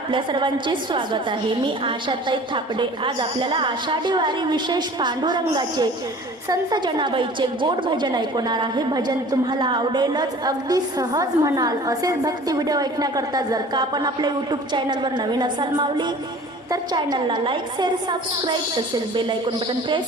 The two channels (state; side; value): normal; both; correlation 0.45